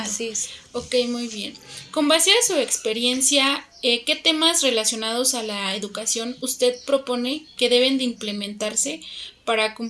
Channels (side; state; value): both; identical; correlation 1.00